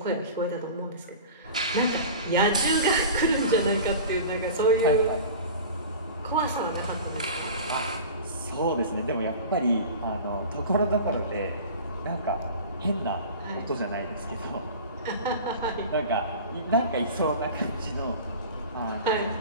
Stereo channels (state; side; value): inverted; both; correlation -0.37